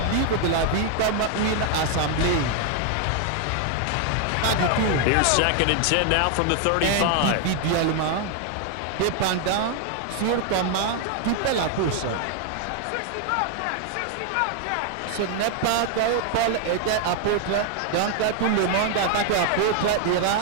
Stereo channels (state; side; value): different; both; correlation 0.00